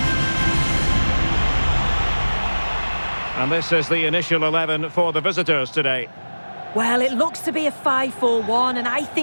And this is the initial 11 for the visitors today. Well, it looks to be a 5-4-1, and I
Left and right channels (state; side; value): inverted; both; correlation -1.00